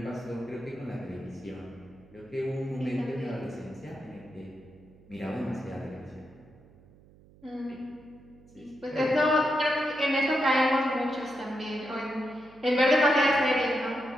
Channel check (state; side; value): noise; right; hum, 25 dB below the sound